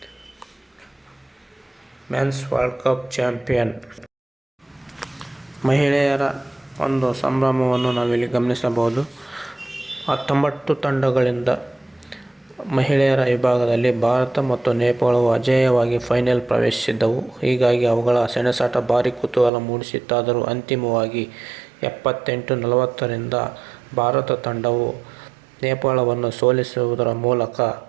Men's world cup champion. ಮಹಿಳೆಯರ ಒಂದು ಸಂಭ್ರಮವನ್ನು ನಾವಿಲ್ಲಿ ಗಮನಿಸಬಹುದು. 19 ತಂಡಗಳಿಂದ ಮಹಿಳೆಯರ ವಿಭಾಗದಲ್ಲಿ ಭಾರತ ಮತ್ತು ನೇಪಾಳವು ಅಜೇಯವಾಗಿ ಫೈನಲ್ ಪ್ರವೇಶಿಸಿದ್ದವು. ಹೀಗಾಗಿ ಅವುಗಳ ಸೆಣಸಾಟ ಭಾರೀ ಕುತೂಹಲ ಮೂಡಿಸಿತ್ತಾದರೂ ಅಂತಿಮವಾಗಿ 78-40ರಿಂದ ಭಾರತ ತಂಡವು ನೇಪಾಳವನ್ನು ಸೋಲಿಸುವುದರ ಮೂಲಕ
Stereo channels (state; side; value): drops out; left; at 19.5 s